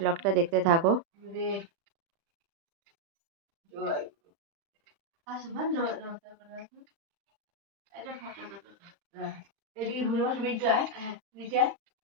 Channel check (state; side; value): late; left; 35 ms